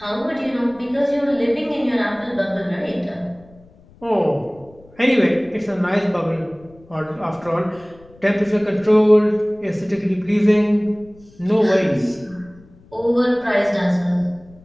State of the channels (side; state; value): left; noise; rumble, 26 dB below the sound